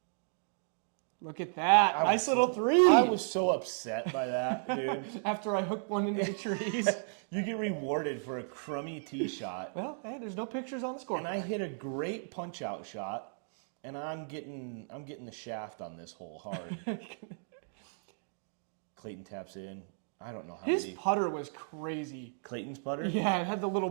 Look at that. Nice little three. I was so upset by that, dude. After I hooked one into the trees. You get rewarded for a crummy tee shot. Well, hey, there's no pictures on the score. And I hit a great punch-out shot, and I'm getting the shaft on this hole hard. Clayton taps in. I don't know how His putter was crazy. Clayton's putter? Yeah, it had the little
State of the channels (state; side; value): silent; left; digital silence